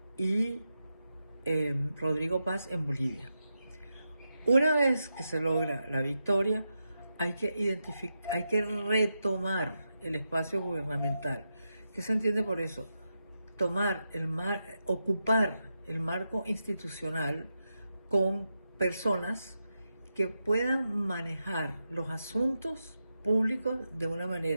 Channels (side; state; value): both; inverted; correlation -0.88